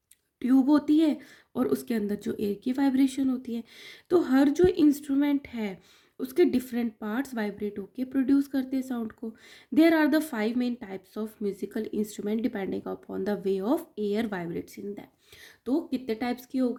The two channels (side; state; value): both; identical; correlation 1.00